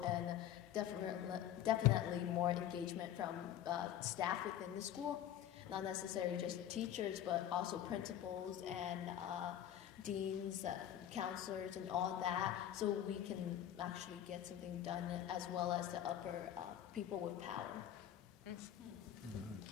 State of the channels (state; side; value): quieter; right; 11.1 dB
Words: and definitely more engagement from staff within the school. Not necessarily just teachers, but also principals and deans, counselors, and all that, so we can actually get something done, as well as the upper people with power. Mm-hmm.